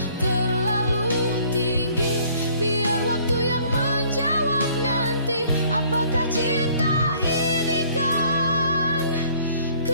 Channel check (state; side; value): inverted; both; correlation -0.58